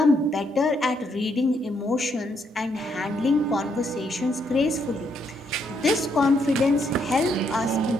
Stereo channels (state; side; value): normal; both; correlation 0.74